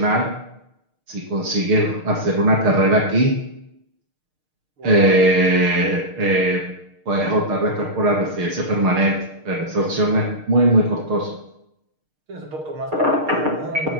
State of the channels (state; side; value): late; left; 6.5 ms